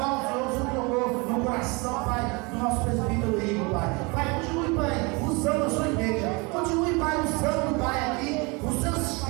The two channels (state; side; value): quieter; left; 28.1 dB